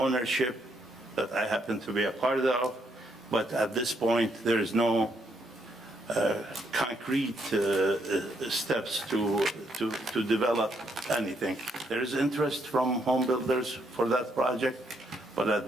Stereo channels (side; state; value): both; normal; correlation 0.74